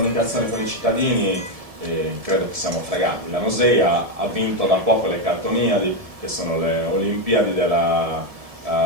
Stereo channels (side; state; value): left; late; 1.7 ms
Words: con i cittadini credo che siamo fregati. La Nosei ha vinto da poco le Cartoniadi, che sono le Olimpiadi della